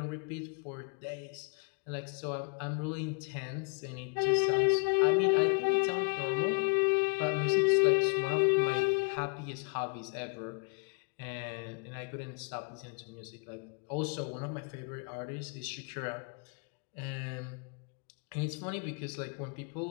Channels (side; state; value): right; quieter; 31.5 dB